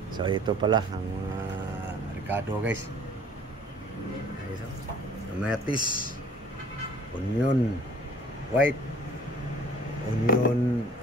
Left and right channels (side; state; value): both; normal; correlation 0.52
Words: So ito pala ang mga Ricardo guys. Kamatis, onion, white, onion,